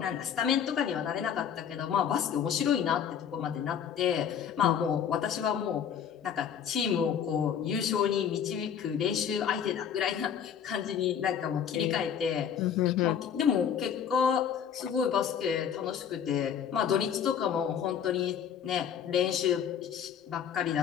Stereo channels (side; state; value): right; quieter; 8.3 dB